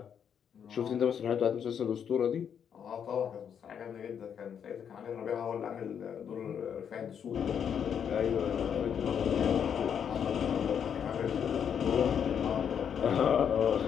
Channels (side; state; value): right; quieter; 8.0 dB